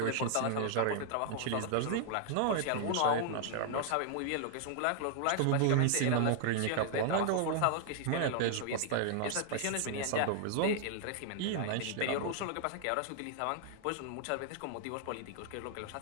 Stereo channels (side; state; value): both; different; correlation -0.01